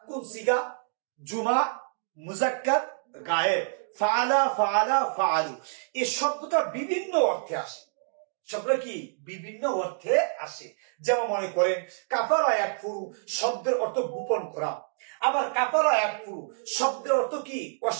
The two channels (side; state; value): left; silent; digital silence